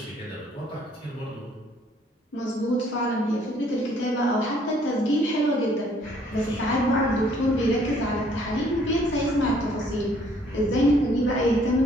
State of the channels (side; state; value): both; normal; correlation 0.62